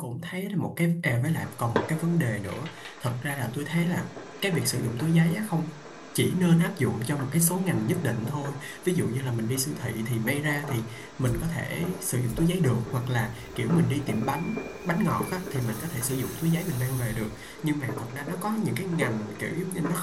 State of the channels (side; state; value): both; identical; correlation 1.00